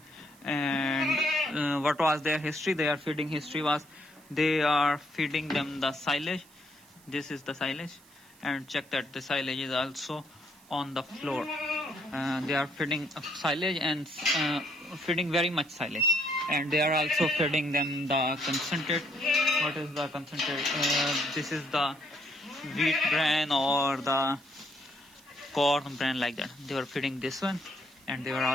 And what was their history? Their feeding history was they are feeding them the silage. This is the silage, and check that the silage is also on the floor. They are feeding silage and feeding very much silage, and they are also feeding them the concentrate. What is the concentrate? This is the wheat bran or the corn bran, like that. They were feeding this one, and they were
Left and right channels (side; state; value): right; noise; hiss, 26 dB below the sound